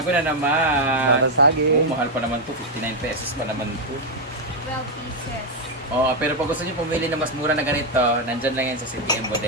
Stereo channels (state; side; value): normal; both; correlation 0.01